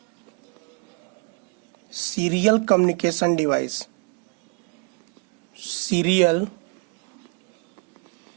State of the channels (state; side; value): quieter; left; 33.9 dB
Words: सीरियल कम्युनिकेशन डिवाइस,